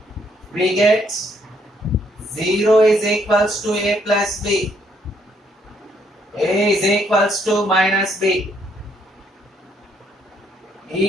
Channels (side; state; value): both; normal; correlation 0.70